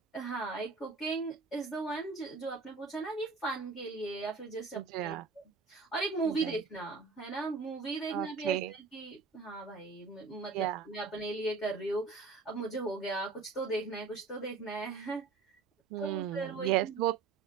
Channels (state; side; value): quieter; left; 4.6 dB